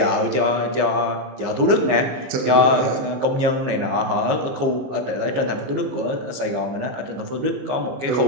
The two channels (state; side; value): late; left; 15 ms